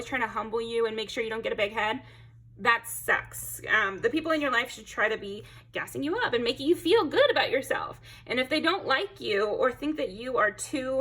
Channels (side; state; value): both; identical; correlation 1.00